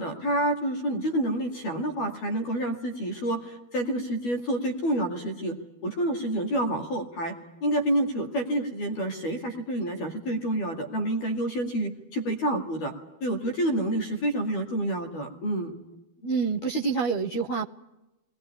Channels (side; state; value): right; late; 12 ms